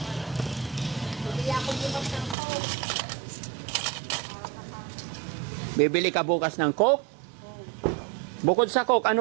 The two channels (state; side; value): drops out; left; at 2.4 s